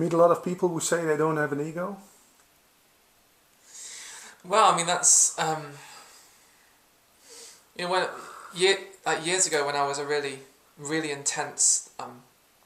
a lot of people who say they don't have an ego? Well, I mean, that's years ago when I was a really intense,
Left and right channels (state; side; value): identical; both; correlation 1.00